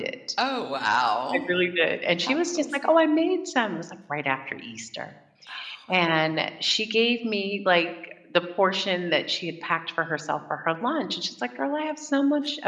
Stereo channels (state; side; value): identical; both; correlation 1.00